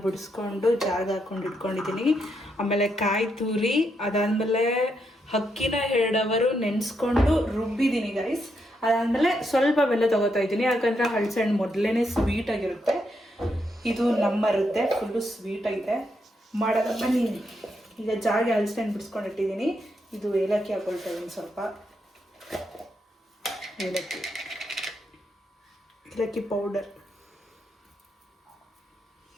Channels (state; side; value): normal; both; correlation 0.80